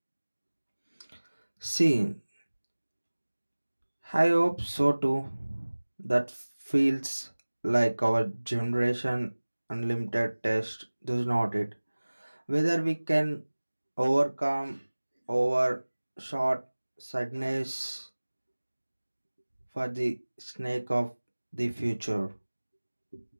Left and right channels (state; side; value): inverted; both; correlation -1.00